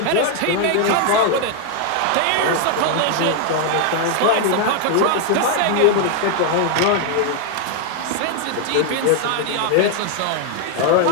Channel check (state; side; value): different; both; correlation 0.00